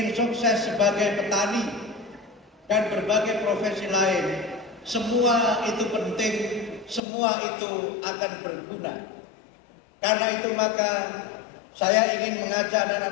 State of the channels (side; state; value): right; drops out; at 7.0 s